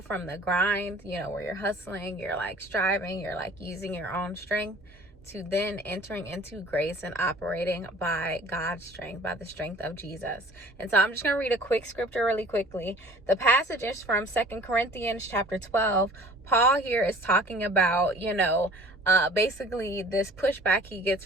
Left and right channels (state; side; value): normal; both; correlation 0.48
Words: from the grind, where you're hustling, you're like striving, you're like using your own strength, to then entering into grace and operating by God's strength, by the strength of Jesus. And so I'm just going to read a quick scripture really quickly. The passage is from 2 Corinthians chapter 12. Paul here is talking about, basically this pushback he gets